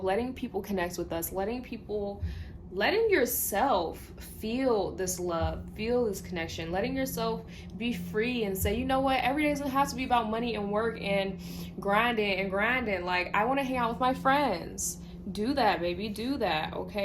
letting people connect with us, letting yourself feel this love, feel this connection, letting yourself be free and say, you know what, every day doesn't have to be about money and work and grinding. Like, I want to hang out with my friends. Do that, baby. Do that,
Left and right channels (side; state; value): both; identical; correlation 1.00